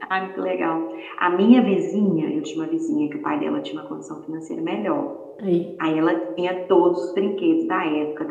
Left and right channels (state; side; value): identical; both; correlation 1.00